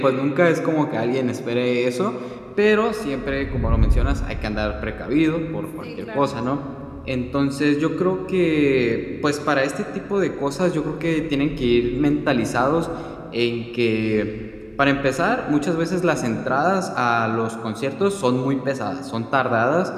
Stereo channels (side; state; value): both; identical; correlation 1.00